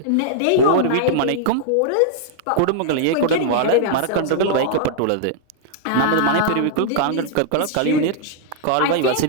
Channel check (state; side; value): different; both; correlation -0.01